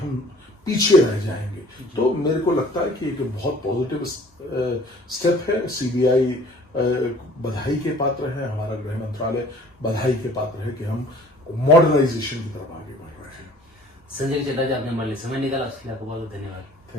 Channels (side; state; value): both; normal; correlation 0.51